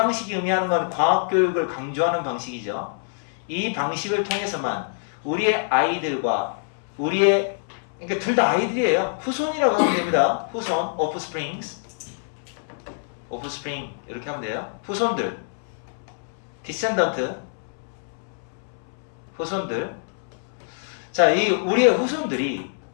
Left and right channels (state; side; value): silent; right; 62 dB below the other